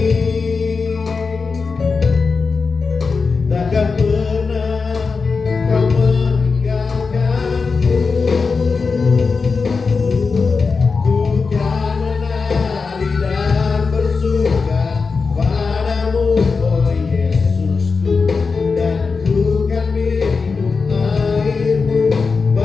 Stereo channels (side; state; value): right; quieter; 4.7 dB